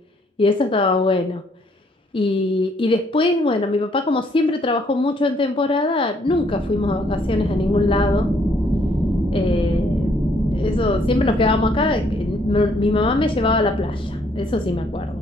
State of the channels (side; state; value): both; normal; correlation 0.67